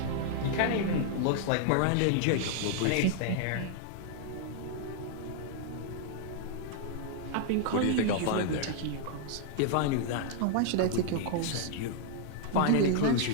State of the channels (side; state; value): both; different; correlation -0.01